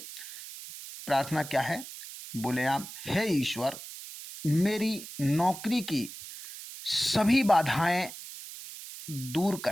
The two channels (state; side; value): noise; right; hiss, 12 dB below the sound